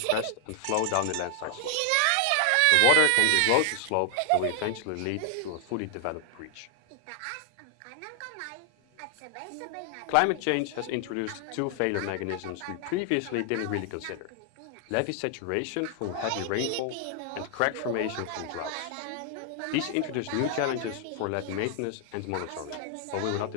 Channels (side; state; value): both; different; correlation 0.00